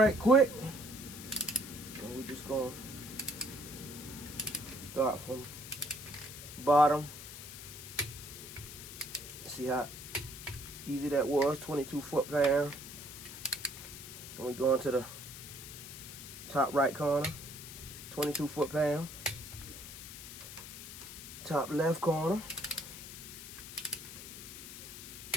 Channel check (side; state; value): left; noise; hiss, 11 dB below the sound